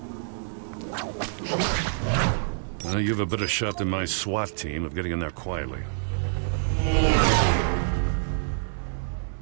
Well, you have a better shot than my SWAT team of getting in there quietly.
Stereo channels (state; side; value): silent; left; 60 dB below the other